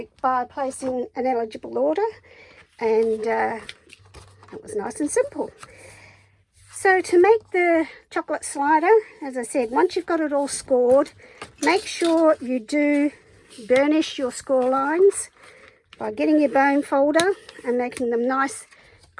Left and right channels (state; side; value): identical; both; correlation 1.00